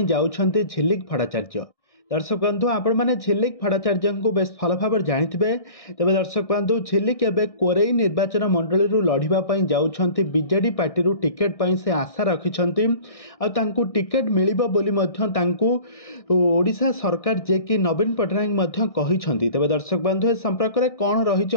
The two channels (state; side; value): late; right; 1.6 ms